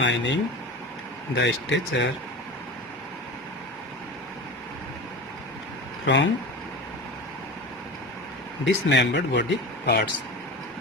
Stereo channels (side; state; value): both; normal; correlation 0.30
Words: the stature from dismembered body parts.